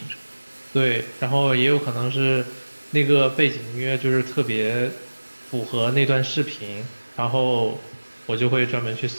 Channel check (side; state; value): both; inverted; correlation -1.00